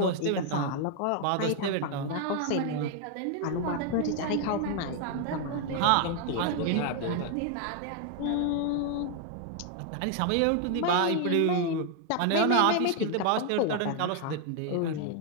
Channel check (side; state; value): both; different; correlation 0.01